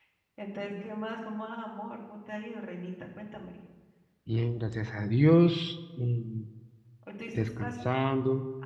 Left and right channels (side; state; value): both; identical; correlation 1.00